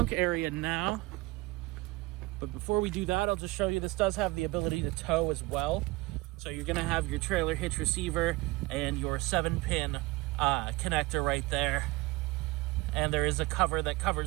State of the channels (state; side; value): quieter; left; 21.6 dB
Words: area now. But before we do that, I'll just show you this does have the ability to tow as well. So you're going to have your trailer hitch receiver and your 7-pin connector right there. And there is a cover that